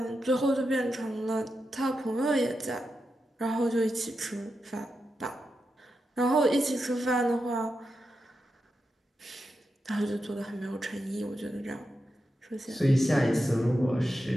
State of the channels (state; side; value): normal; both; correlation 0.88